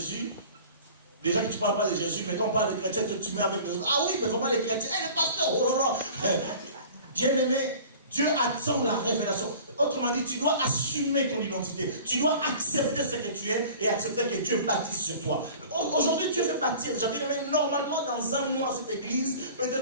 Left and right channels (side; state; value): both; inverted; correlation -0.43